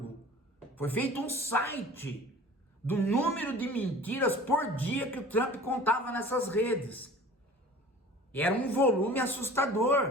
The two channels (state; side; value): normal; both; correlation 0.43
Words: foi feito um site do número de mentiras por dia que o Trump contava nessas redes. Era um volume